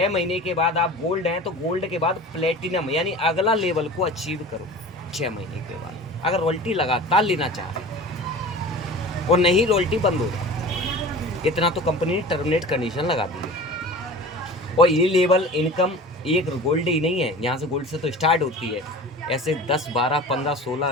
महीने के बाद आप गोल्ड हैं, तो गोल्ड के बाद प्लेटिनम यानी अगला लेवल को अचीव करो 6 महीने के बाद, अगर रॉयल्टी लगातार लेना चाह रहे हैं, और नहीं रॉयल्टी बंद हो जाती। इतना तो कंपनी ने टर्मिनेट कंडीशन लगा दी है। और ये लेवल इनकम एक गोल्ड ही नहीं है, यहाँ से गोल्ड से तो स्टार्ट होती है, ऐसे 10, 12, 15,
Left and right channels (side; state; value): both; normal; correlation 0.38